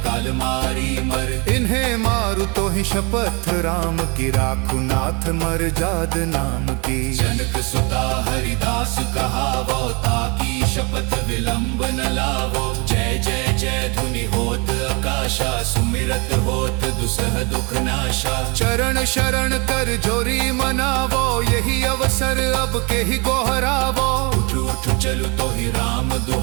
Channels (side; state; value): left; quieter; 30.3 dB